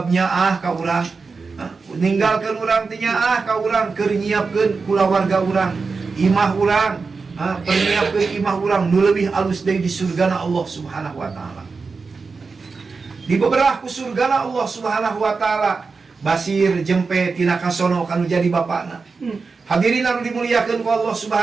nyaah ka urang. Ninggalkeun urang teh nyaah ka urang, keur nyiapkeun kulawarga urang, imah urang, perniapkeun imah urang nu leuwih alus deui di surgana Allah Subhanahu wa taala. Di beberapa ku surgana Allah Subhanahu wa taala, Basir jempe tina kasono kanu jadi bapana. Hadirin anu dimuliakeun ku Allah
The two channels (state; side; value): quieter; left; 4.6 dB